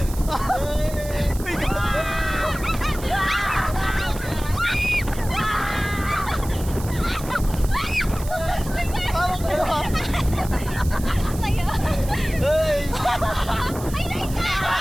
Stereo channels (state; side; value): noise; right; hiss, 15 dB below the sound